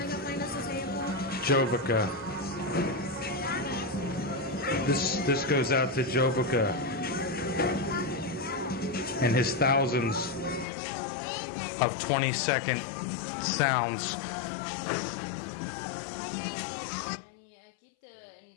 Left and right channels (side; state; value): right; drops out; at 10.7 s